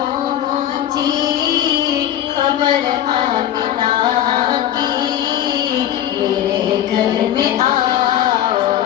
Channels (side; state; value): right; quieter; 11.5 dB